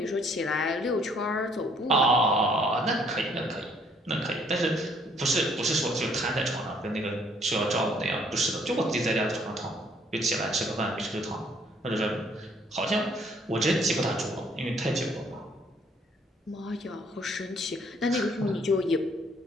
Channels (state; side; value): normal; both; correlation 0.63